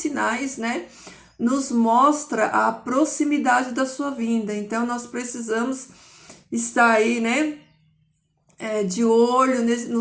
né, nos mostra a proximidade da sua vinda. Então nós precisamos estar aí, né, de olho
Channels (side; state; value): both; identical; correlation 1.00